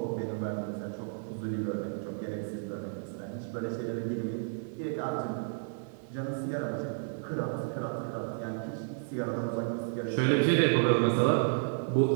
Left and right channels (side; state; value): left; silent; 57 dB below the other